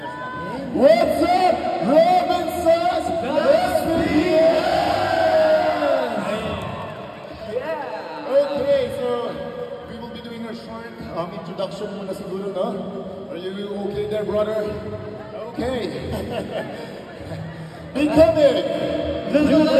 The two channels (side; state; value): both; identical; correlation 1.00